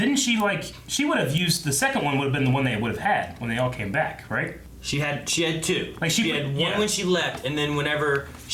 have used the second one would have been the one they would have had when they all came back, right? She had two. Like she had one when she left, and then whenever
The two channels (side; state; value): both; identical; correlation 1.00